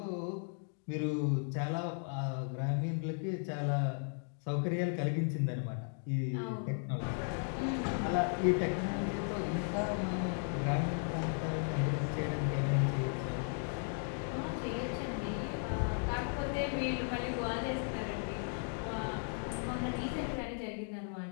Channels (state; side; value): silent; right; 54 dB below the other